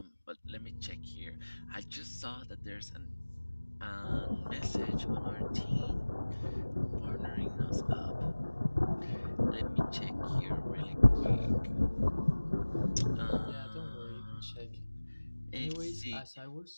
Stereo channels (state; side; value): inverted; both; correlation -1.00